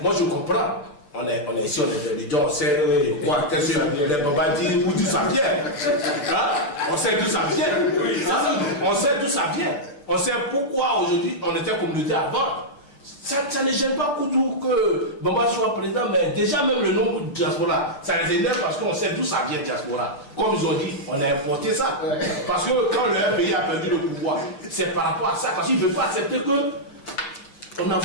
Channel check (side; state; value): right; late; 6.8 ms